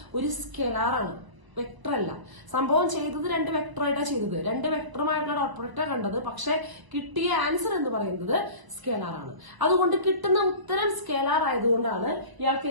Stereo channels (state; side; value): late; left; 1.0 ms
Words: ഒരു സ്കെലാറാണ്. വെക്ടർ അല്ല. സംഭവം ചെയ്തത് 2 വെക്ടറായിട്ടാണ് ചെയ്തത്. 2 വെക്ടറുമായിട്ടുള്ള ഡോട്ട് പ്രൊഡക്റ്റാണ് കണ്ടത്. പക്ഷെ കിട്ടിയ ആൻസർ എന്ന് പറയുന്നത് സ്കേലാർ ആണ്. അതുകൊണ്ട് കിട്ടുന്ന ഉത്തരം സ്കേലാർ ആയതുകൊണ്ടാണ് ഇയാൾക്ക്